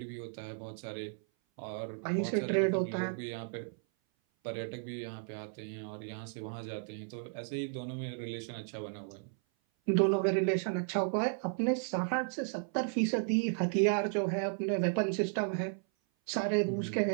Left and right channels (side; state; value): left; silent; 55 dB below the other